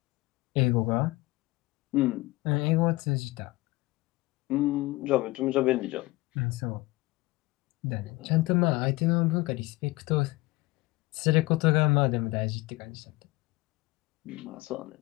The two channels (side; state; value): right; quieter; 20.9 dB